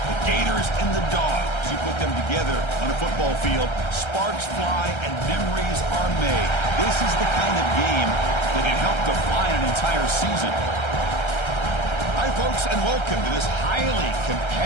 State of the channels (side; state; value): right; late; 1.3 ms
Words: Gators and the Dogs. You put them together on a football field, sparks fly and memories are made. This is the kind of game that can help define an entire season. Hi, folks, and welcome to this highly